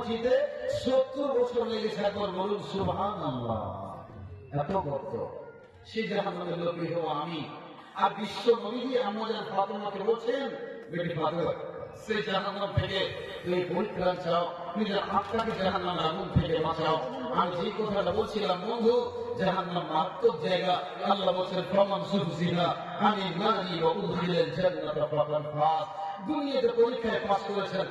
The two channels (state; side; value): identical; both; correlation 1.00